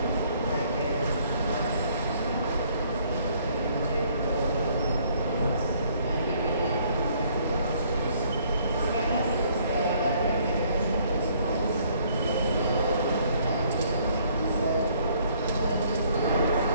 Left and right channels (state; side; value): inverted; both; correlation -0.63